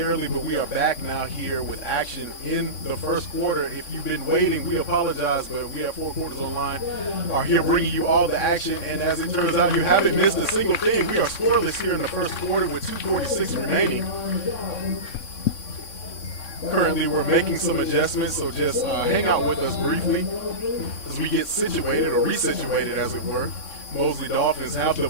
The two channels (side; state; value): right; late; 3.6 ms